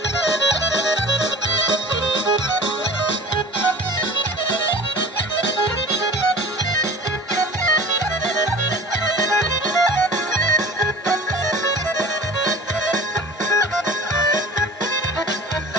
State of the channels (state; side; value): normal; both; correlation 0.40